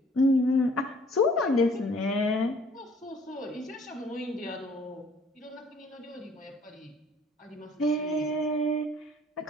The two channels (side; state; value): both; normal; correlation 0.56